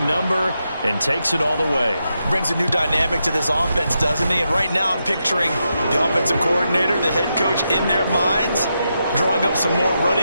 number and takes it all the way. Brings a new dynamic to this offense, doesn't he? And right now I'm picturing the offensive coordinator, the head coach in their minds, drawing up some more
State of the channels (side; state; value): both; inverted; correlation -0.85